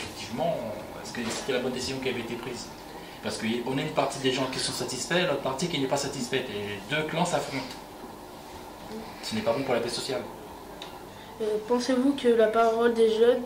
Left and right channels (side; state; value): both; identical; correlation 1.00